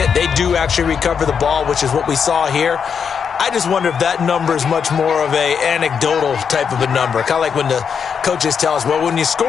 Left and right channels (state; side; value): quieter; right; 6.8 dB